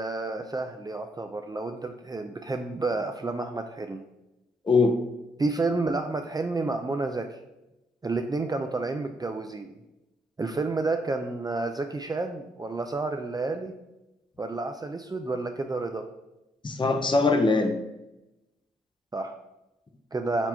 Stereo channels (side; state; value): both; normal; correlation 0.74